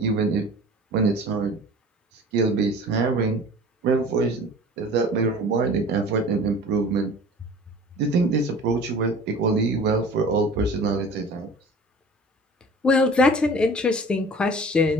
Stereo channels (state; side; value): normal; both; correlation 0.43